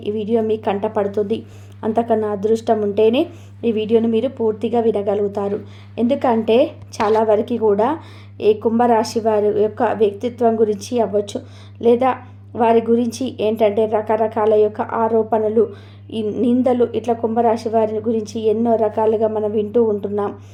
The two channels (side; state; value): both; identical; correlation 1.00